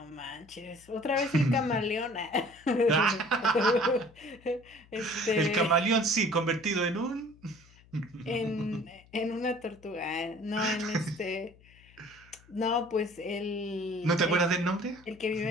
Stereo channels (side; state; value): left; noise; hum, 26 dB below the sound